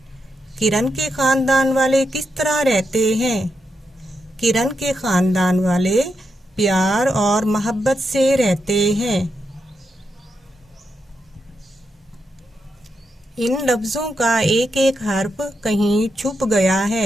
किरण के खानदान वाले किस तरह रहते हैं? किरण के खानदान वाले प्यार और मोहब्बत से रहते हैं। इन लफ्ज़ों का एक एक हर्फ कहीं छुप गया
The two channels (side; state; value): both; normal; correlation 0.84